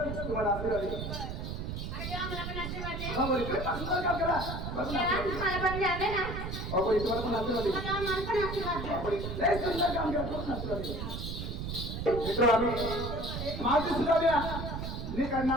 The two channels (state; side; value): noise; right; rumble, 5 dB below the sound